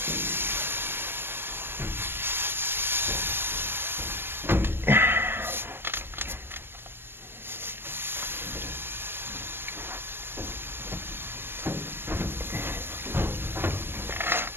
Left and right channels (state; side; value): late; left; 0.11 ms